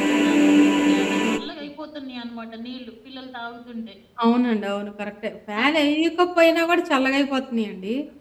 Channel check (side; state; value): both; identical; correlation 1.00